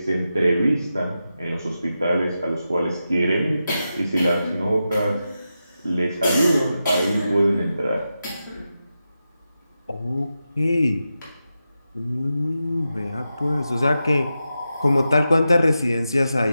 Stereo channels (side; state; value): both; inverted; correlation -0.90